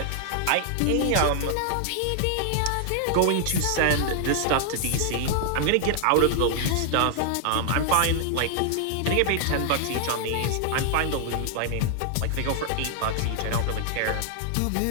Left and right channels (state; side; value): different; both; correlation 0.00